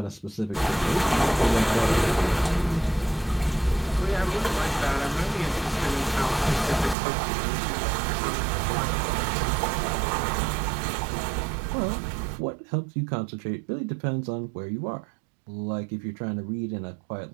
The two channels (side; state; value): left; drops out; at 7.0 s